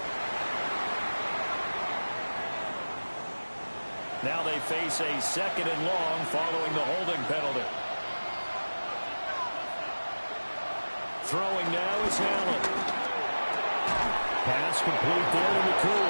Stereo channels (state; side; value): inverted; both; correlation -1.00